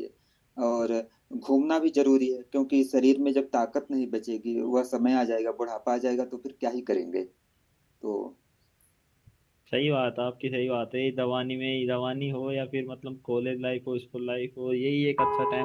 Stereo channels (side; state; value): both; identical; correlation 1.00